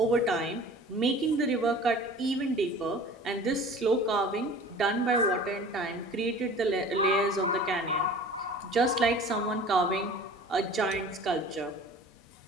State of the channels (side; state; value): both; normal; correlation 0.43